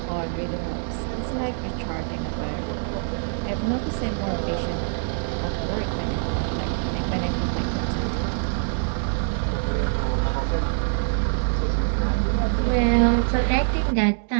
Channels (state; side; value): silent; left; digital silence